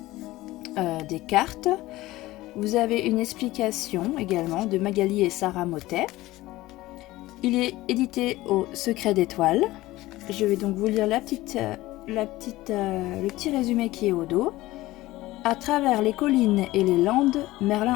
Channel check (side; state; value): right; quieter; 17.8 dB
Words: des cartes. Vous avez une explication également de Magali et Sarah Motet. Il est édité au Secret d'étoiles. Je vais donc vous lire le petit résumé qui est au dos. À travers les collines et les landes,